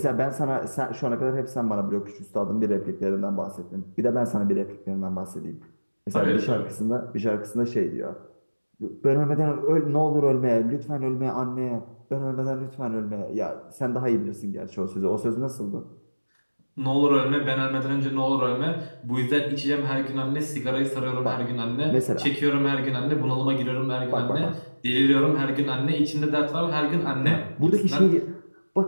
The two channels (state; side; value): inverted; both; correlation -1.00